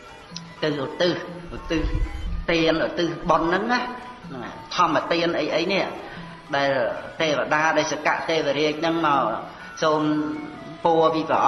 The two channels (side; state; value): both; identical; correlation 1.00